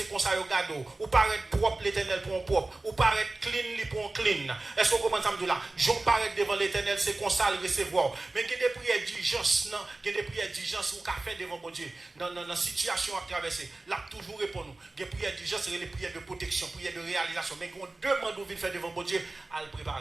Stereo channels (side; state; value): left; quieter; 3.1 dB